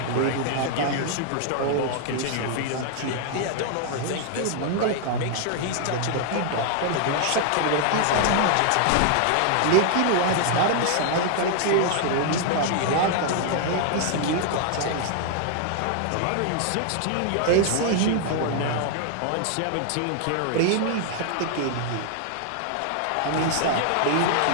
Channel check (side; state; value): both; different; correlation 0.00